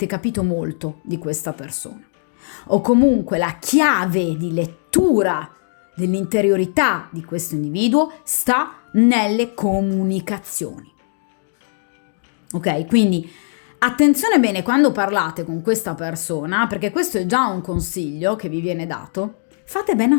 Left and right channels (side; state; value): right; silent; digital silence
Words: capito molto di questa persona. o comunque la chiave di lettura dell'interiorità di questo individuo sta nelle comunicazioni. Ok? Quindi attenzione bene quando parlate con questa persona, perché questo è già un consiglio che vi viene dato. Fate bene